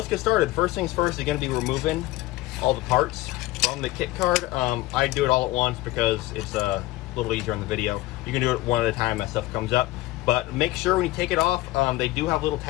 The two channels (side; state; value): right; quieter; 18.1 dB